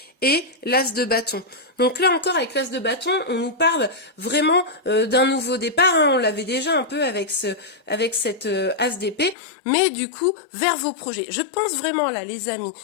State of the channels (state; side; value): drops out; right; at 9.3 s